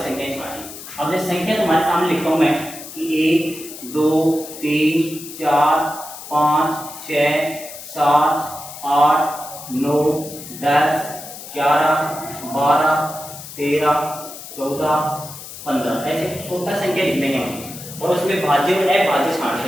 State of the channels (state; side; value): noise; left; hiss, 13 dB below the sound